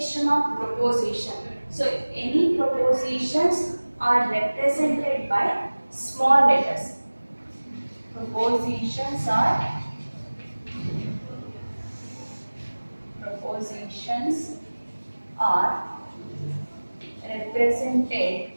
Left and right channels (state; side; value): inverted; both; correlation -1.00